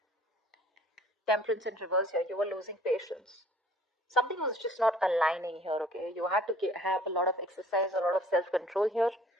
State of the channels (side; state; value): both; normal; correlation 0.54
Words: Temperance in reverse here. You were losing patience. Something was just not aligning here, okay? You had to have a lot of exercise, a lot of self-control here,